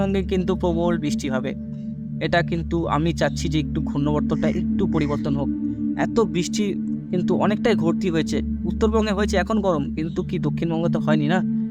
কিন্তু প্রবল বৃষ্টি হবে। এটা কিন্তু আমি চাচ্ছি যে একটু ঘূর্ণবর্তটা একটু পরিবর্তন হোক। এত বৃষ্টি কিন্তু অনেকটাই ঘটতি হয়েছে, উত্তরবঙ্গে হয়েছে এখন গরম, কিন্তু কি দক্ষিণবঙ্গে তো হয়নি না।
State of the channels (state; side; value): identical; both; correlation 1.00